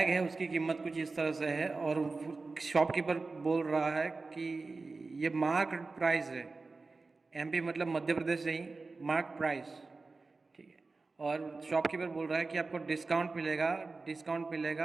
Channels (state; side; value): quieter; left; 3.8 dB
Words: है, उसकी कीमत कुछ इस तरह से है और शॉपकीपर बोल रहा है कि ये मार्क प्राइस है, एमपी मतलब मध्य प्रदेश नहीं, मार्क प्राइस, ठीक है, और शॉपकीपर बोल रहा है कि आपको डिस्काउंट